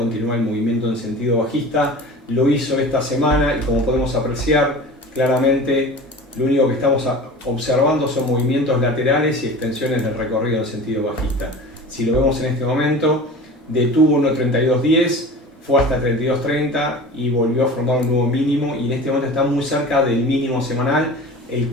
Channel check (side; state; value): both; normal; correlation 0.37